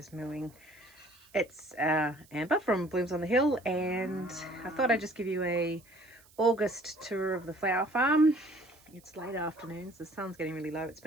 mooing. It's Amber from Blooms on the Hill, and I thought I'd just give you a August tour of the flower farm. It's late afternoons, the sun's getting really low. It's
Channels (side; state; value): right; noise; hiss, 27 dB below the sound